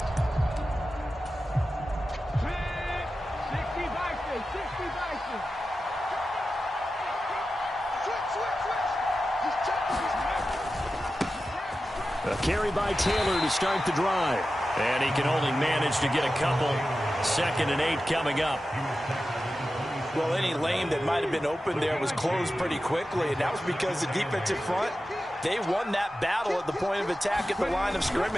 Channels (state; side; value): normal; both; correlation 0.93